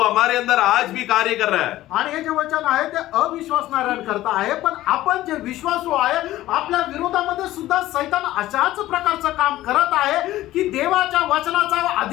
हमारे अंदर आज भी कार्य कर रहा है. आणि हे जे वचन आहे ते अविश्वासणाऱ्यांकरता आहे, पण आपण जे विश्वासू आहे आपल्या विरोधामध्ये सुद्धा सैतान अशाच प्रकारचं काम करत आहे की देवाच्या वचनाचा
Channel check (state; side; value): quieter; right; 15.3 dB